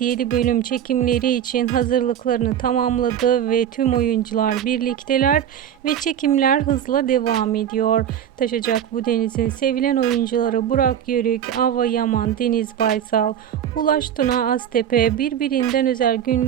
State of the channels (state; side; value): quieter; left; 9.6 dB